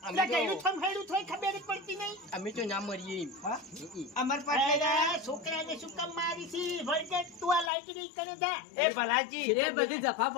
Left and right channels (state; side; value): drops out; right; at 7.7 s